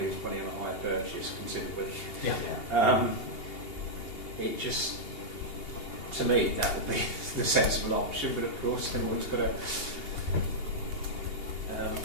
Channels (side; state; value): right; late; 2.8 ms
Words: lose money on a hire purchase considerably. Yeah. It just, to me, that would be the sensible option, but of course everyone's got to